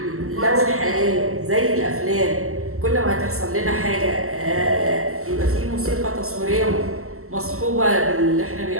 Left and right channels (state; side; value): late; left; 0.63 ms